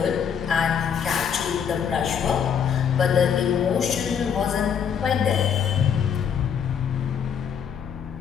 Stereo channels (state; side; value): quieter; right; 7.7 dB